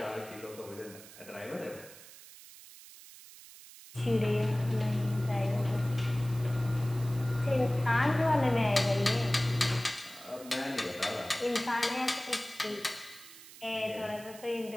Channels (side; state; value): right; noise; hiss, 18 dB below the sound